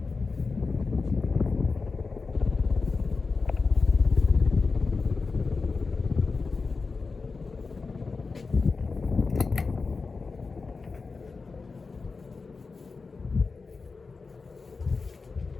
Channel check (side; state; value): right; quieter; 4.3 dB